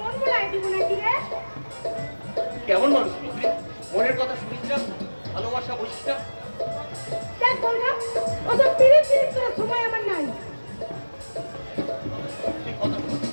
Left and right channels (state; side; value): inverted; both; correlation -1.00